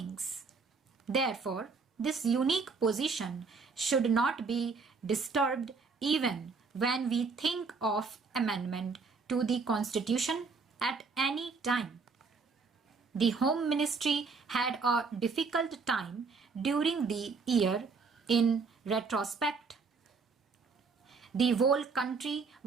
Therefore, this unique position should not be disturbed even when we think of amendment to the Constitution at any time. The Home Ministry had a difficult time during the year in retrospect. The whole country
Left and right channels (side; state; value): left; quieter; 4.7 dB